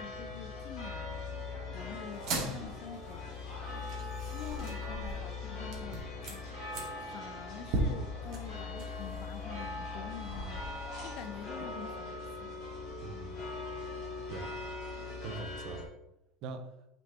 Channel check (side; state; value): both; normal; correlation 0.33